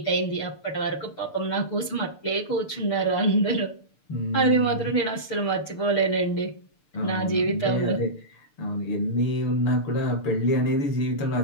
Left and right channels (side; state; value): right; late; 6.8 ms